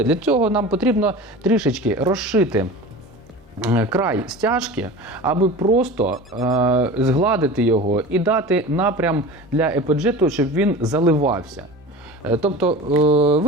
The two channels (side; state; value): both; normal; correlation 0.34